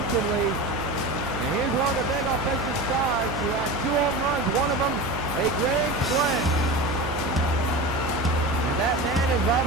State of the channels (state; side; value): noise; right; hum, 8 dB below the sound